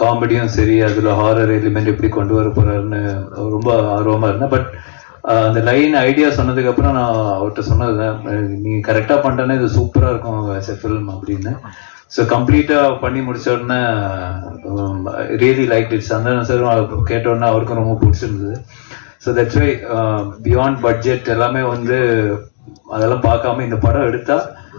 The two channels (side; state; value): right; silent; digital silence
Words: சரி, அதில் ஹாரர் எலிமெண்ட் எப்படி கொண்டு வர போறாருன்னு ரொம்ப ஆர்வமாக இருந்தேன். பட் அந்த லைன் ஐடியா சொன்னதுக்கப்புறம் நான் அவர்கிட்ட சொன்னதுதான், நீ கரெக்டாக பண்ணுறேன்னா இது சூப்பராக இருக்கும் ஆஸ் எ ஃபில்ம் அப்படின்னு. ஸோ கம்ப்ளீட்டாக பண்ணி முடிச்ச உடனே really like it. Santhanam sir கேட்ட உடனே அவருக்கும் ரொம்ப பிடிச்சிருந்தது. So that's why beyond budget எல்லாமே அதெல்லாம் பார்க்காம இந்த படம் எடுத்தா,